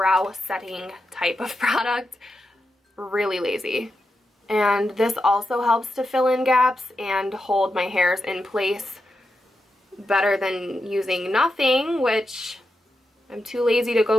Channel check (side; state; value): both; normal; correlation 0.87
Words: setting type of product. Really lazy. And this also helps to fill in gaps and hold my hairs in place better than using nothing, which I'm too lazy to